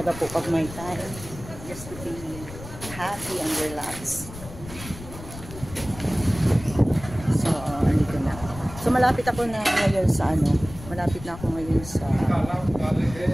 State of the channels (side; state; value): left; noise; rumble, 14 dB below the sound